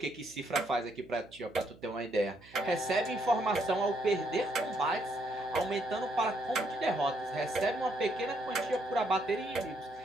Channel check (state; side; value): noise; right; hum, 24 dB below the sound